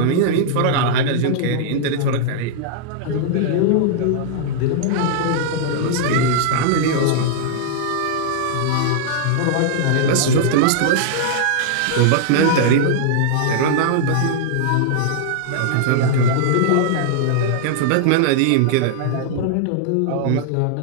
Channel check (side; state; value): both; different; correlation -0.01